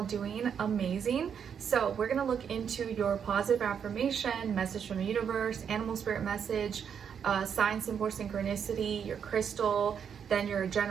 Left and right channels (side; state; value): left; quieter; 7.6 dB